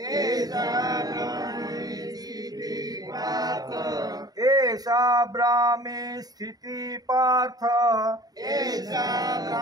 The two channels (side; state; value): left; late; 0.18 ms